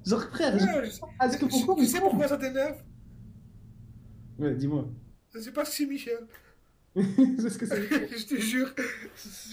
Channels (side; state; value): both; identical; correlation 1.00